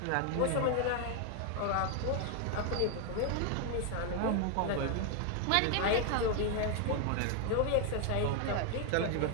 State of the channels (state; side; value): different; both; correlation 0.00